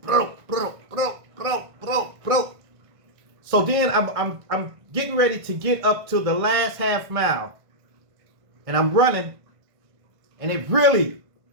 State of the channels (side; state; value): left; late; 1.5 ms